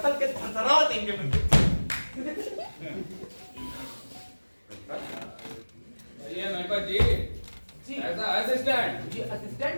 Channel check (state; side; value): inverted; both; correlation -1.00